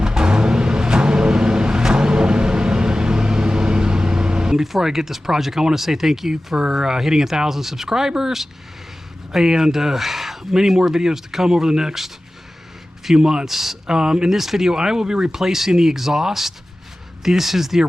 Before I get this project, I want to say thank you for hitting 1,000 subscribers, and many more videos to come over the next few months. In this video, I will be replacing the exhaust. This is the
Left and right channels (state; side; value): normal; both; correlation 0.96